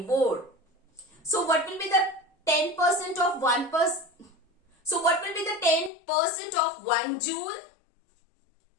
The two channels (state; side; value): drops out; right; at 5.9 s